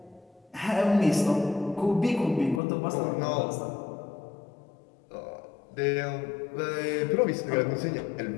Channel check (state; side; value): drops out; right; at 2.6 s